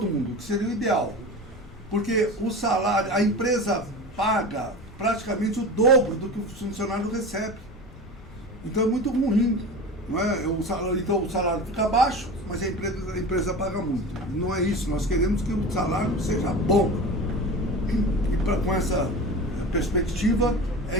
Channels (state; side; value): normal; both; correlation 0.31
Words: mundo, que seria o ideal. Porque o salário, a empresa paga praticamente o dobro do que o funcionário recebe. Então é muito ruim. Não é? Então o salário fica baixo, mas a empresa paga muito. Não é isso, nós queremos que o salário seja bom. E com essa perspectiva,